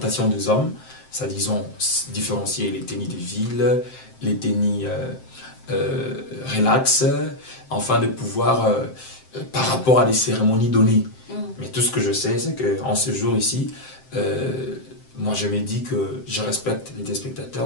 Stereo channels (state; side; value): late; right; 7.7 ms